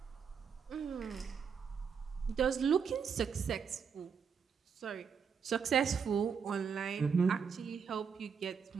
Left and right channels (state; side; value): quieter; left; 6.4 dB